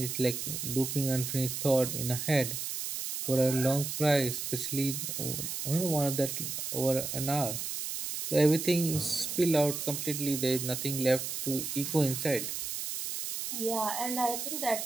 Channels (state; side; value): noise; right; hiss, 4 dB below the sound